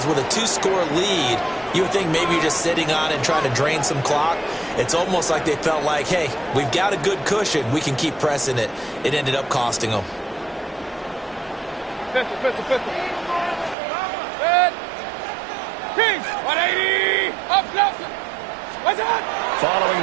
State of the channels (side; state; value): left; drops out; at 13.8 s